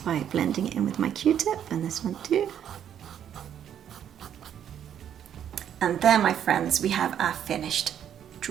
by blending it in with my Q-tip, and this one too. And there, my friends, we have our finished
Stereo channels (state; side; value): quieter; left; 9.5 dB